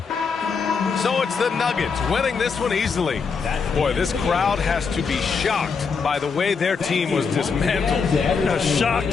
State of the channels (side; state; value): right; quieter; 5.4 dB